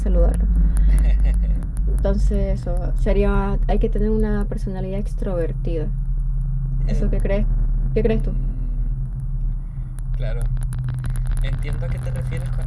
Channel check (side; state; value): both; identical; correlation 1.00